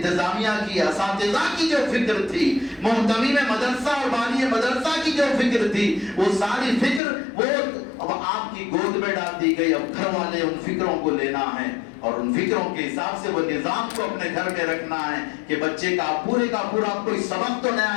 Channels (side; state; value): right; drops out; at 7.0 s